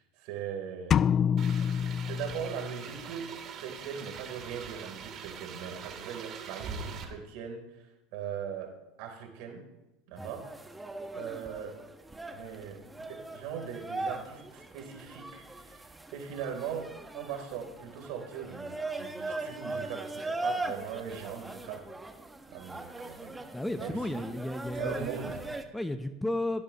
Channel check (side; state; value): both; normal; correlation 0.63